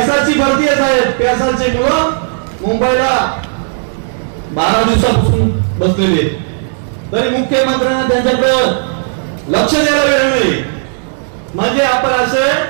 भरती आहे साहेब. पेसाचे मुलं मुंबईला 12 दिवसापासून बसलेले आहेत, तरी मुख्यमंत्र्यांना त्यांच्याकडे लक्ष द्यायला वेळ नाही. म्हणजे आपण असे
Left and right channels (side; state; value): left; silent; digital silence